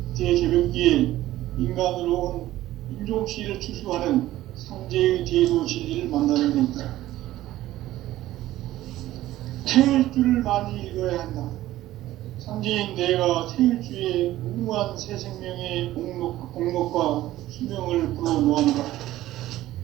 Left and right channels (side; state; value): left; quieter; 15.0 dB